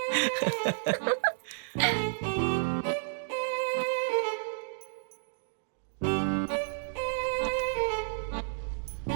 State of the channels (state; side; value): silent; left; digital silence